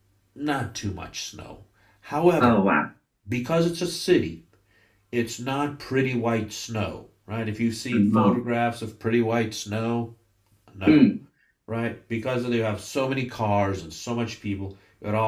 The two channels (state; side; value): identical; both; correlation 1.00